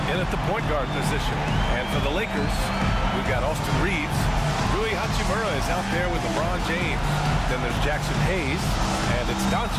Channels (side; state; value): both; identical; correlation 1.00